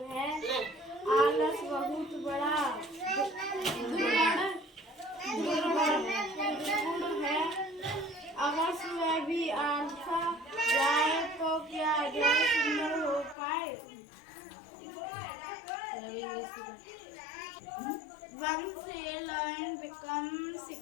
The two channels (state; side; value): drops out; right; at 13.4 s